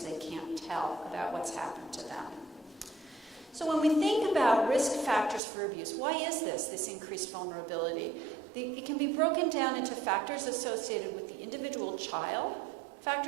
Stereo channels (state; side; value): drops out; left; at 5.4 s